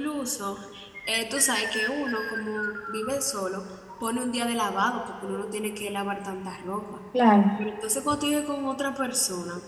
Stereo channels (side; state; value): both; identical; correlation 1.00